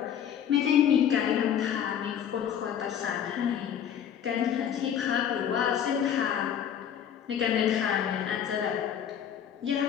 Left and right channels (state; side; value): quieter; right; 9.1 dB